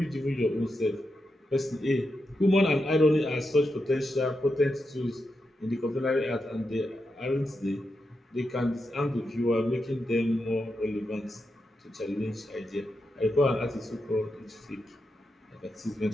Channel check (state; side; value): normal; both; correlation 0.86